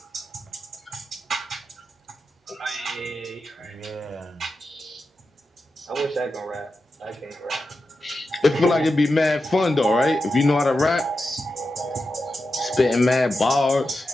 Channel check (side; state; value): both; normal; correlation 0.90